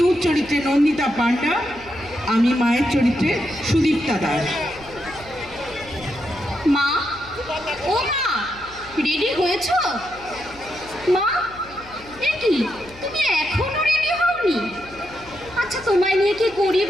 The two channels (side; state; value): left; noise; hum, 22 dB below the sound